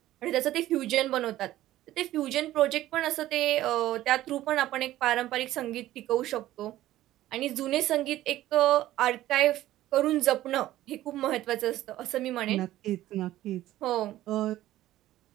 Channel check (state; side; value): quieter; left; 14.6 dB